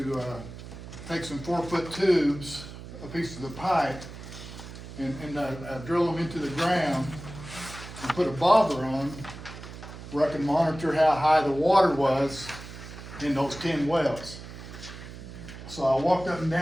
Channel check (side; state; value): right; noise; hum, 13 dB below the sound